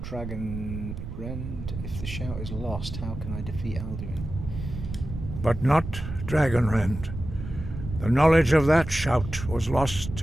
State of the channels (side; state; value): right; noise; rumble, 8 dB below the sound